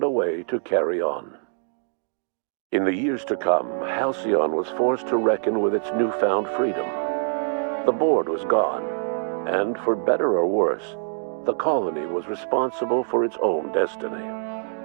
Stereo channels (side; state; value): left; silent; 62 dB below the other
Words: a way to carry on. In the years to come, Halcyon was forced to reckon with its newfound freedom. The board was gone, and for better or worse, the colony was responsible for its own destiny.